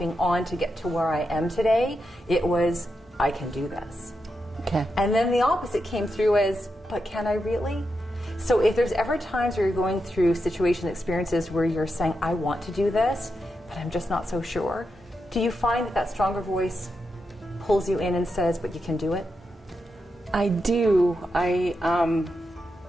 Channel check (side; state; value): both; normal; correlation 0.86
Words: on to get to where I am today. It was, I can do this. Okay. And then the opposite came through as, but can I really? So if there's ever times where you're going through situations, experiences where you're saying, I want to do this, but I'm just not so sure, do you find that that stronger voice pulls you in and says, but you can do it? I do.